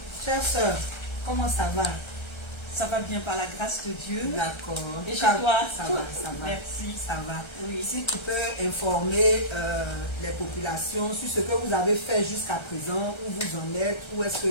chère soeur, comment ça va? Ça va bien par la grâce de Dieu. D'accord. Et chez toi? Ça va, ça va. Merci. Ça va. Oui. Si tu peux informer les populations sur ce que vous avez fait jusqu'à présent, où vous en êtes, où est-ce que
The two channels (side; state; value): right; late; 1.3 ms